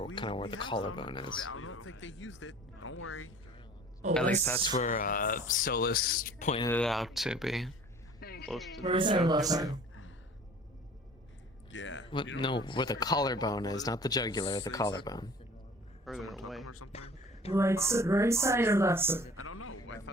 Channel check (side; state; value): both; normal; correlation 0.47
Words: kind of where the collarbone is. I don't think they used it. Don't worry. Oh, At least that's where Solus pointed it out to be. Close to Right side or left side? Yeah. What? No, where the collarbone is, not the jugular, the collarbone. Further away. Right side or left side? I don't know.